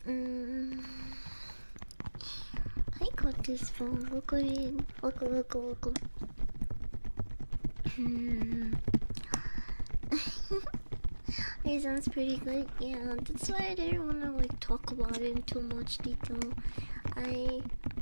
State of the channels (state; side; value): inverted; both; correlation -1.00